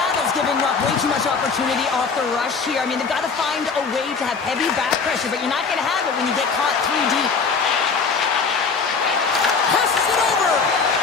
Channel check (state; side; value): quieter; right; 5.1 dB